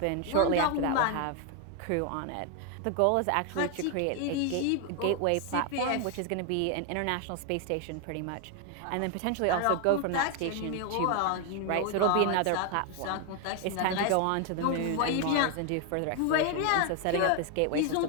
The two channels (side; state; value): both; different; correlation 0.01